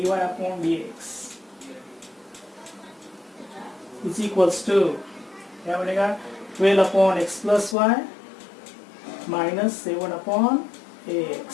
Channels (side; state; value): right; drops out; at 7.8 s